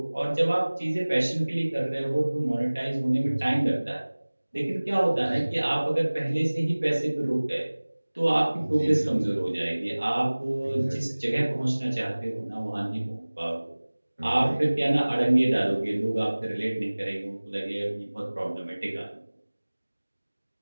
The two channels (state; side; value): inverted; both; correlation -1.00